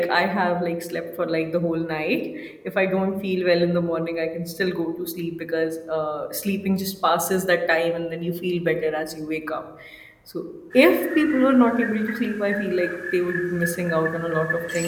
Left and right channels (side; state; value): both; identical; correlation 1.00